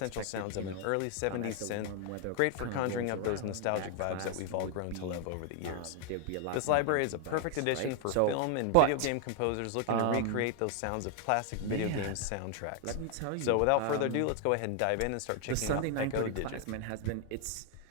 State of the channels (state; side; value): different; both; correlation 0.00